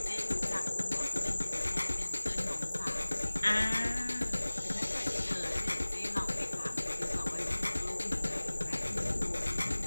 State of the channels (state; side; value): inverted; both; correlation -1.00